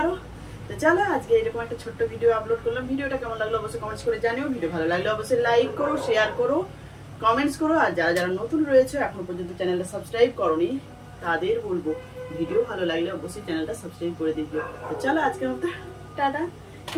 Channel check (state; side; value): identical; both; correlation 1.00